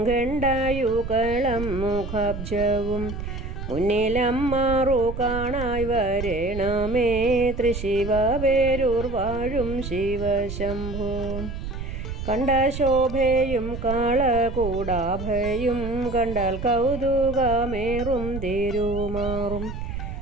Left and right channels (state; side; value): noise; right; rumble, 7 dB below the sound